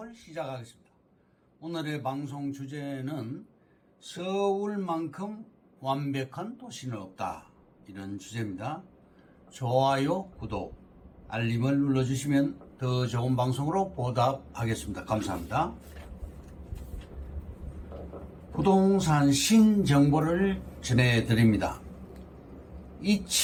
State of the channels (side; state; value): both; identical; correlation 1.00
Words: 시작하겠습니다. 오늘의 방송 주제는 서울만큼 완벽한 도시는 없다, 이런 주제입니다. 좋아요, 구독, 알림을 눌러주시면 더 좋은 방송으로 보답하겠습니다. 감사합니다. 부동산 신정보를 전해드립니다.